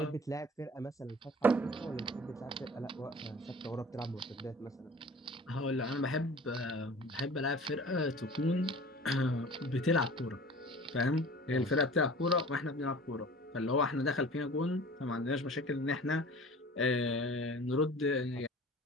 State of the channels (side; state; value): both; normal; correlation 0.43